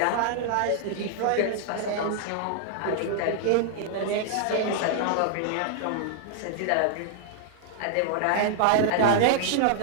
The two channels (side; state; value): both; different; correlation -0.01